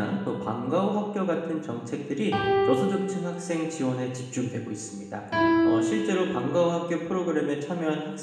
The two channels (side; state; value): both; identical; correlation 1.00